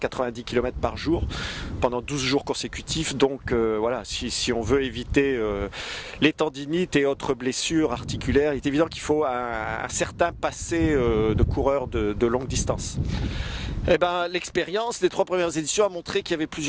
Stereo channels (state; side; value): identical; both; correlation 1.00